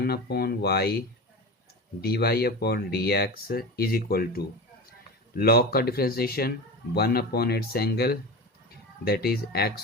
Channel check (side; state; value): both; normal; correlation 0.26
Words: dy/dx is equal to log का differentiation 1/its angle that is